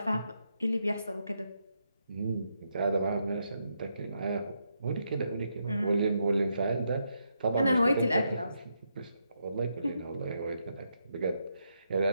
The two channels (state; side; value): inverted; both; correlation -0.80